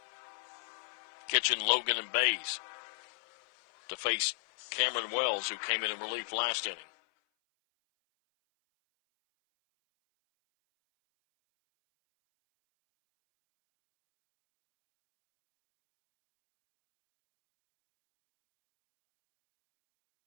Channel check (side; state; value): right; silent; 55 dB below the other